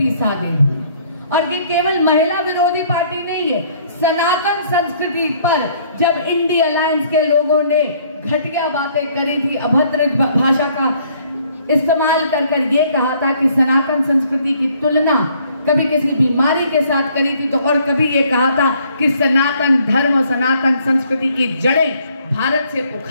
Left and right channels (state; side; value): inverted; both; correlation -0.62